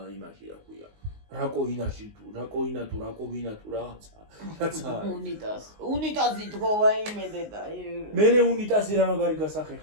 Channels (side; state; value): left; late; 19 ms